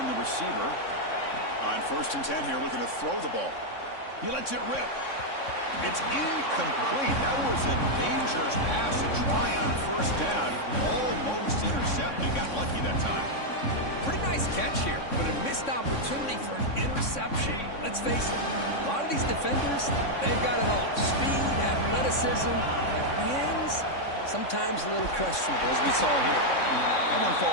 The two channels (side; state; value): right; late; 3.6 ms